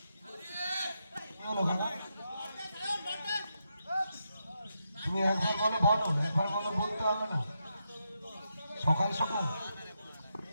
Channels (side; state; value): both; inverted; correlation -0.84